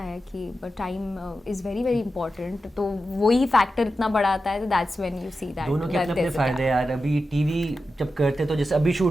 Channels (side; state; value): both; normal; correlation 0.91